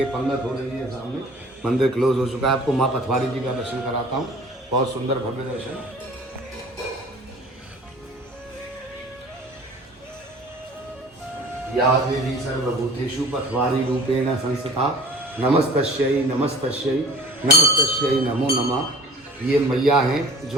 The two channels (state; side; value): normal; both; correlation 0.46